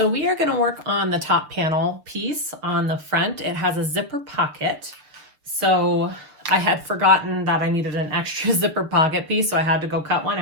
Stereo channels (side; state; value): left; late; 6.7 ms